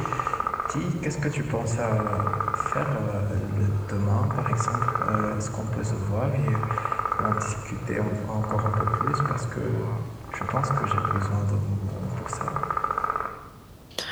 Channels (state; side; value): identical; both; correlation 1.00